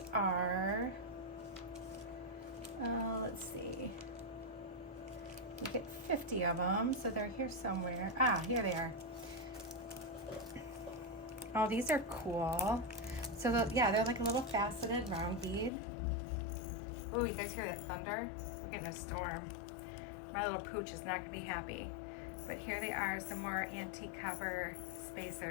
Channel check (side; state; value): right; drops out; at 15.7 s